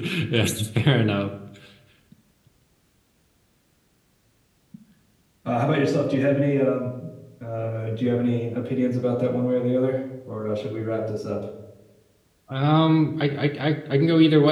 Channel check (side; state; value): both; identical; correlation 1.00